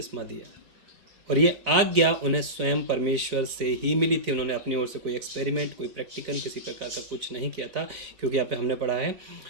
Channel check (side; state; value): left; late; 4.2 ms